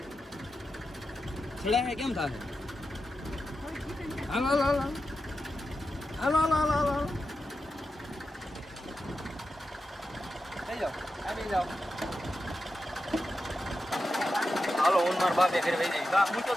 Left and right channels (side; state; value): both; normal; correlation 0.90